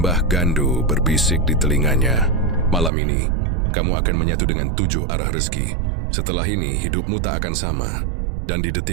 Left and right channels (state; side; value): drops out; left; at 2.9 s